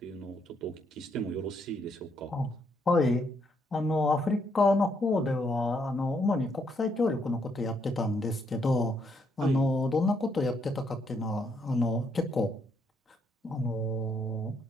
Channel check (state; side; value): normal; both; correlation 0.74